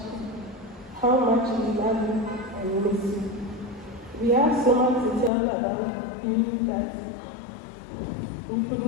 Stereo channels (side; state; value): right; drops out; at 5.3 s